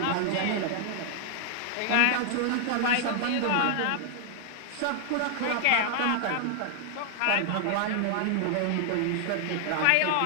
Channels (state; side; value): different; both; correlation 0.00